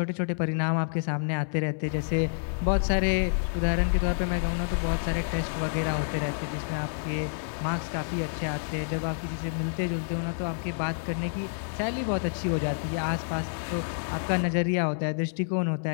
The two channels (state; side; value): silent; right; 59 dB below the other